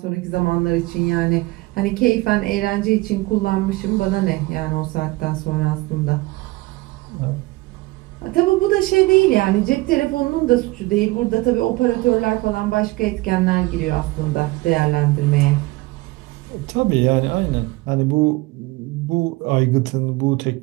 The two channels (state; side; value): quieter; left; 21.3 dB